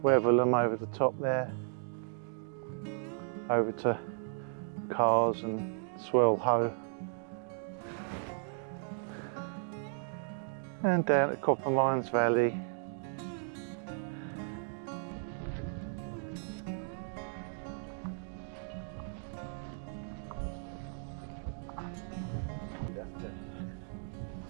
Weatherlam over the top there, over to Cars and Swell Hoe, and down at Copper Mines Valley.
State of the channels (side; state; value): left; silent; digital silence